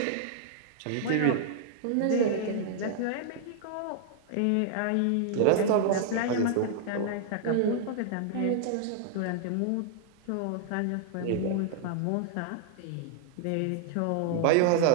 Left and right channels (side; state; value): both; different; correlation 0.00